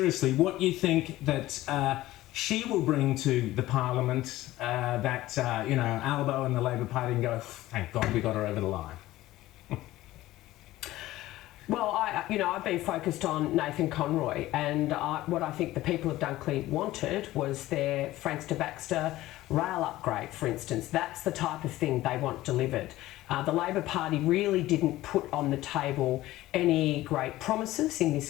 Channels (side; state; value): right; quieter; 16.4 dB